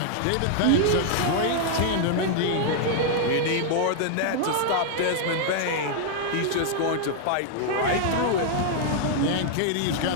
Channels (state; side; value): different; both; correlation -0.01